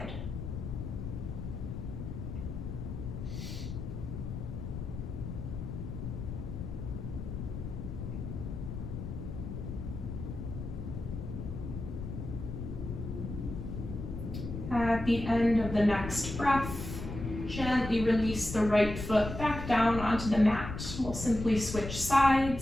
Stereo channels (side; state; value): left; noise; rumble, 6 dB below the sound